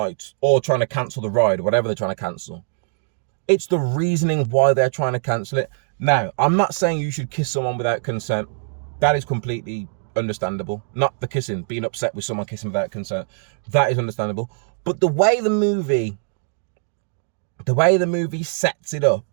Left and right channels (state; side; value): silent; left; digital silence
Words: or trying to cancel the ride, whatever they're trying to cancel. It's the reasoning why they're trying to cancel it. Now, I'm not saying you should kiss someone without consent. That is completely understandable. Not the kissing, being upset with someone kissing without consent. That is understandable. But the way the movie sets it up